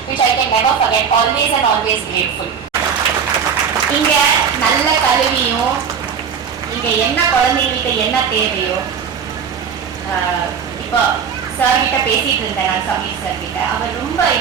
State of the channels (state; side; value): quieter; left; 7.0 dB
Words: which I can never forget. Always and always grateful. இங்க நல்ல கல்வியும், இங்க என்ன குழந்தைங்களுக்கு என்ன தேவையோ, இப்போ sir கிட்ட பேசிட்டு இருந்தேன் நான், சமீர் சார் கிட்ட. அவர் ரொம்ப